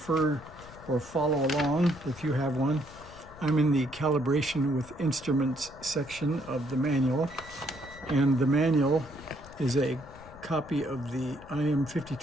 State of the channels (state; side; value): noise; left; rumble, 19 dB below the sound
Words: or follow along, if you have one, I'm in the calibration with instruments section of the manual, and the manual is a copy of the